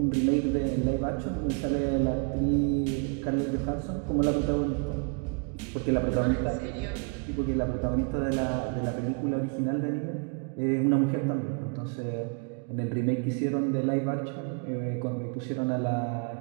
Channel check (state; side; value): quieter; left; 35.6 dB